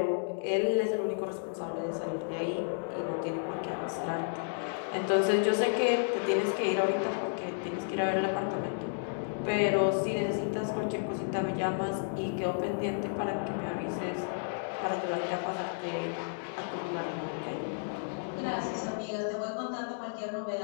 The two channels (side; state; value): right; silent; 56 dB below the other